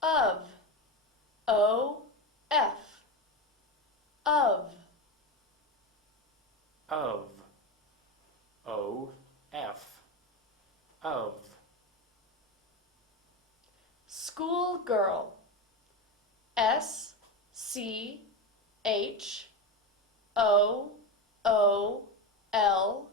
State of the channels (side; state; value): both; normal; correlation 0.18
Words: Of. O F. Of. Of. O, F. Of. Schoolgirl. S C H O O L